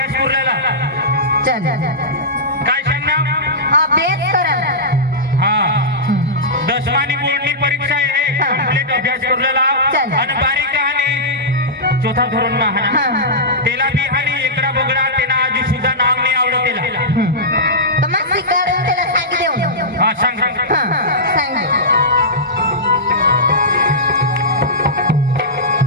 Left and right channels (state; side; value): normal; both; correlation -0.15